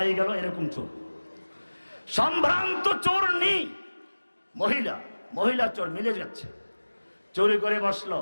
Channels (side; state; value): both; inverted; correlation -1.00